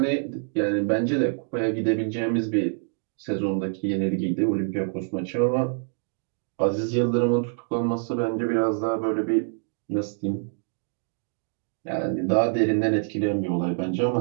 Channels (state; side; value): silent; left; 56 dB below the other